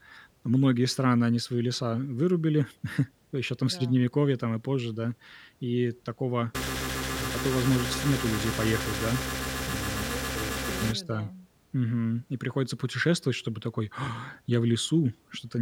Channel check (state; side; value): identical; both; correlation 1.00